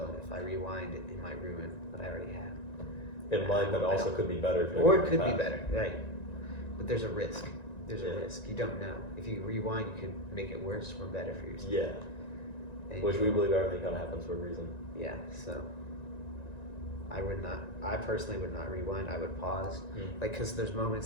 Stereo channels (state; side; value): late; right; 1.9 ms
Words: if I rewind, it might ruin what I already have. It might, but also could be better. Or it could be better, right? But there's a risk. There's a risk. You don't know. If you rewind, you could make it worse or better for yourself. Yeah. Which we believe everything kind of happens for a reason. Yeah. So I personally would not rewind. I would pause, because there's